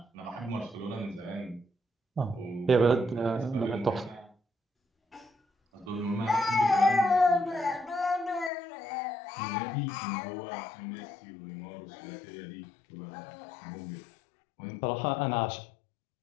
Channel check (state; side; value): drops out; right; at 8.5 s